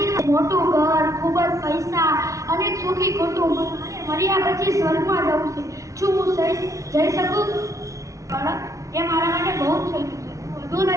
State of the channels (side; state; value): left; late; 0.15 ms